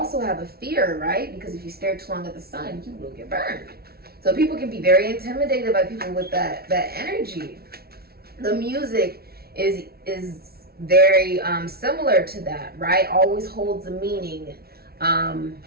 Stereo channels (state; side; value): late; left; 0.45 ms